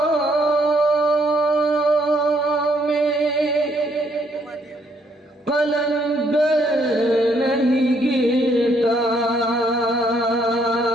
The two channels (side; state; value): both; normal; correlation 0.70